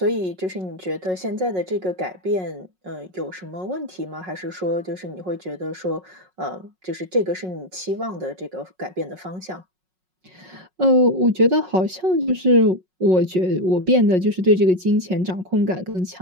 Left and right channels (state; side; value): late; left; 5.4 ms